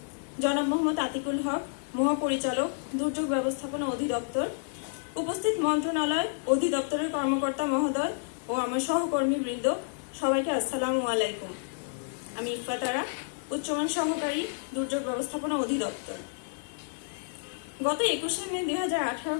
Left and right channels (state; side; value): silent; right; 58 dB below the other